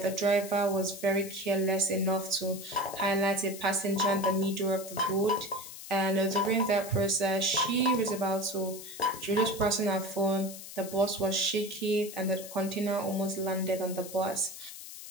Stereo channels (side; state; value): left; noise; hiss, 12 dB below the sound